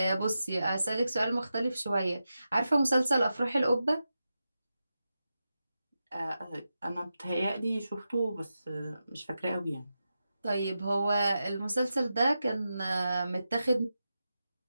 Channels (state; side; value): inverted; both; correlation -0.90